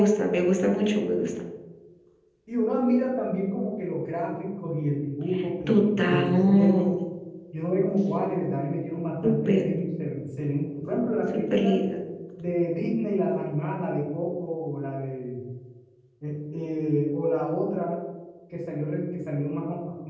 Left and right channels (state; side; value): identical; both; correlation 1.00